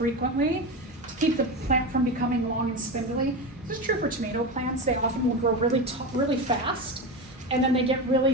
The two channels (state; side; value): normal; both; correlation 0.20